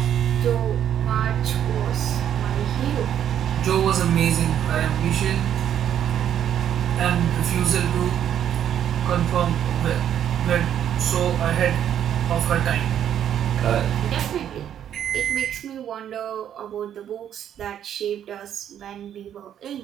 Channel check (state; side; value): quieter; left; 9.9 dB